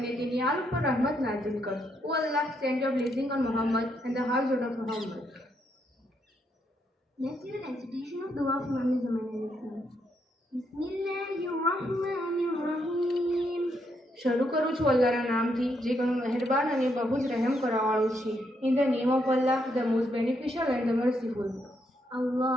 તેની આલ ઉપર રહમત નાઝિલ કર. ઓ અલ્લાહ, send your blessing on Muhammad and the household of Muhammad. Let's hear a recitation of Dua of Imam Zaman al-Islam. Bismillahirrahmanirrahim. શરૂ કરું છું અલ્લાહના નામથી જે ઘણો મહેરબાન અને બહુ જ રહેમ કરવાવાળો છે. In the name of Allah, the most beneficial and the merciful.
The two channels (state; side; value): normal; both; correlation 0.77